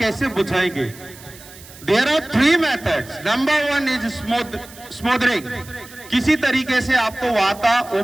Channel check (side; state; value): right; noise; hiss, 19 dB below the sound